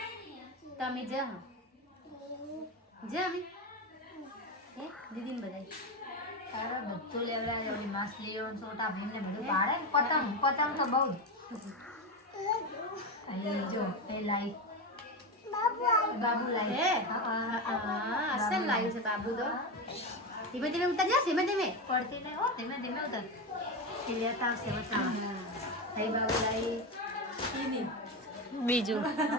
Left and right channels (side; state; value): both; normal; correlation 0.15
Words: તમે જ અમે હે દીદીને બધાય તારે બધું લેવડાવી ઓલી માછલીઓ ને છોટા ભીમ ને બધું ભાડે ને પતંગ પતંગ તો બહુ જ. અહીં જો એ લાઈ બાબુ લાઈ હે અસલ લાવ્યું છે બાબુ તો ધીમે ધીમે ઉતર જા ધીમે ધીમે પડતી નહીં હો ધીમે ધીમે ઉતર. એ લેતા આવશે બચાવવા. અહીં બાબુ લાઈ બીજું